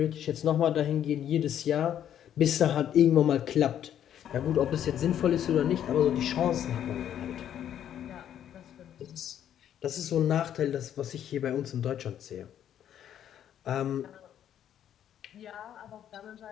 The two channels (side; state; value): right; quieter; 10.2 dB